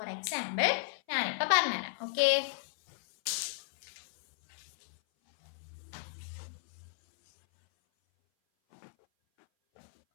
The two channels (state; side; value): silent; right; 55 dB below the other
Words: എക്സാമ്പിൾ ഞാനിപ്പോൾ പറഞ്ഞുതരാം. ഓക്കെ,